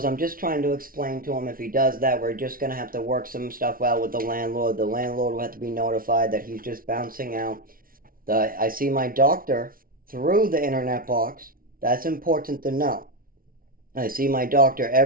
I'm just trying to explain to him if he does that, we're just going to have to work some stuff out with the landlord. The landlord will have to be notified that he's just bouncing out. I see my doctor through the internet box. That's important to know. I see my doctor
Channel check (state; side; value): late; left; 0.42 ms